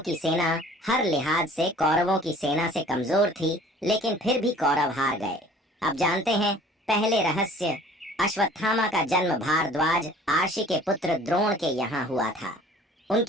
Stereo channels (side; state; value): both; normal; correlation 0.50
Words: सेना हर लिहाज से कौरवों की सेना से कमजोर थी, लेकिन फिर भी कौरव हार गए। अब जानते हैं पहले रहस्य। अश्वत्थामा का जन्म भारद्वाज आर्षि के पुत्र द्रोण के यहाँ हुआ था।